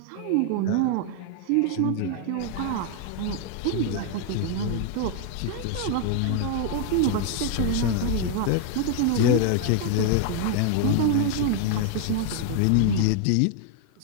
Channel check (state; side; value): different; both; correlation 0.00